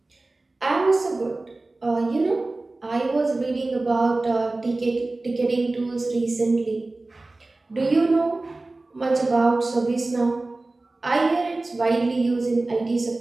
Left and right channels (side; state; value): left; quieter; 3.1 dB